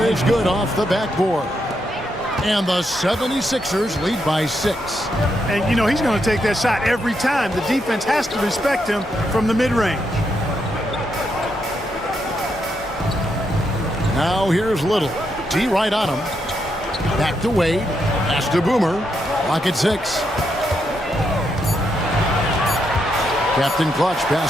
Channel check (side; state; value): both; normal; correlation 0.80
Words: is good off the backboard. And the 76ers lead by 6. And, you know, he's going to take that shot every time. The defense has to respect him from the mid-range. Now here's Little. D right on him. Back to Wade. Pass to Boomer. Lock at 6. Captain Clutch